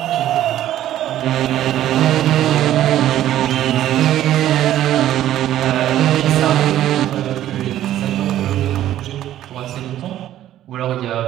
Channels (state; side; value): quieter; left; 12.6 dB